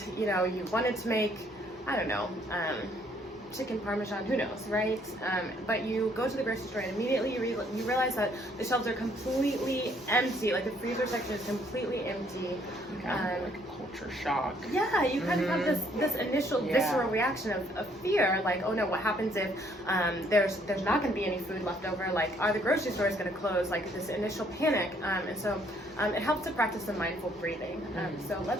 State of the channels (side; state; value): both; normal; correlation 0.66